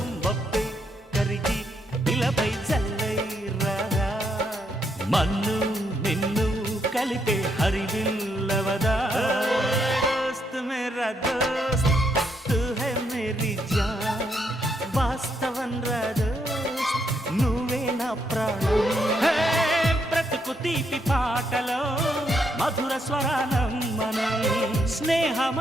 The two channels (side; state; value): both; normal; correlation 0.77